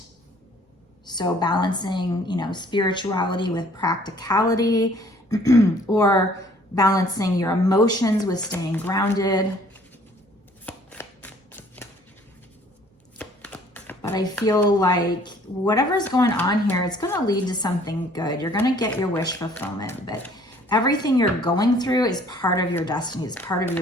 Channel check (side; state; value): both; normal; correlation 0.57